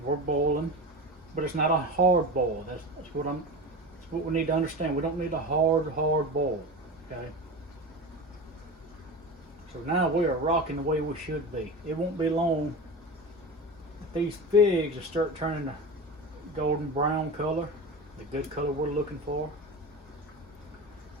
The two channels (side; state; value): both; normal; correlation 0.27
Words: we're boiling. But it's not a hard boil. That's what we need to understand. We don't need a hard boil. Okay? So now we are rocking the way we should be. It won't be long. These figs will start turning a golden brown color, the good color we're looking for.